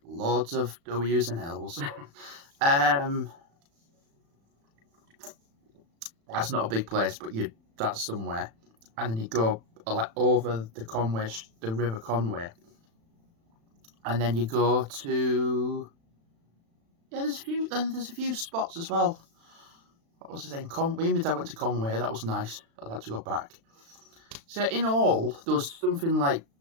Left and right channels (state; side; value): late; left; 36 ms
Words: loads of W's and L's. That's not a big place, but that's somewhere. And then you go like over the River Conway, and then you go to there's a few spots as well. What was the name? Me and my dad went to Conway. That was nice. I'd like to go back. So in all, there was something like